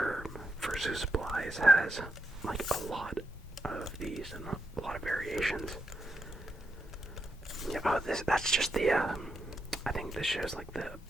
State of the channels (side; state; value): both; normal; correlation 0.83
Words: Fursuit Supplies has like a lot of these and a lot of variations. Yeah, that's just the I think this shows like the